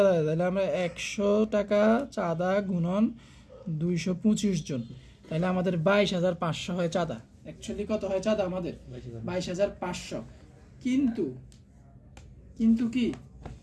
দেয়। তাহলে আমরা 100 টাকা চাঁদা গুণন 225 জন, তাহলে আমাদের 22,500 হয় চাঁদা। অ্যাকচুয়ালি কত হয় চাঁদা আমাদের? 22,500।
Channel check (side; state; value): both; identical; correlation 1.00